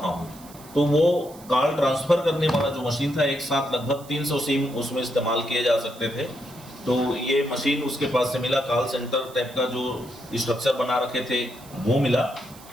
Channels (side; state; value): right; noise; hiss, 21 dB below the sound